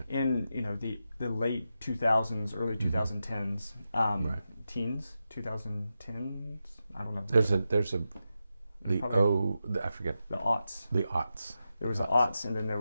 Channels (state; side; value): inverted; both; correlation -0.89